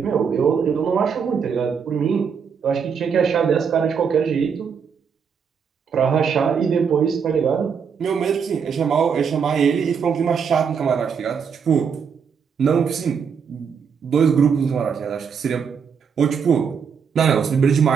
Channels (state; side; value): quieter; left; 6.6 dB